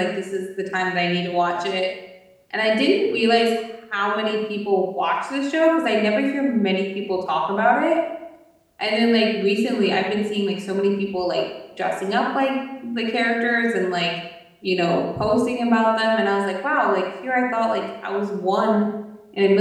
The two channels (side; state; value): both; identical; correlation 1.00